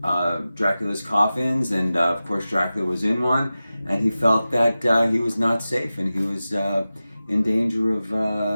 Dracula's coffins, and of course Dracula was in one, and he felt that he was not safe and he was in danger of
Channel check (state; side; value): inverted; both; correlation -0.95